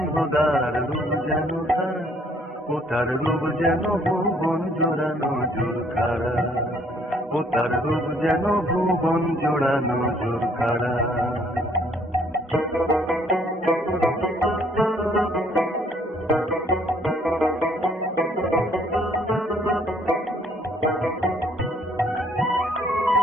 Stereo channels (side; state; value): both; normal; correlation 0.63